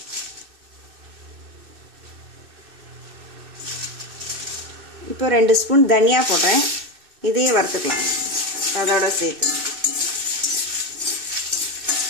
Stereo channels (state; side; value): late; left; 2.6 ms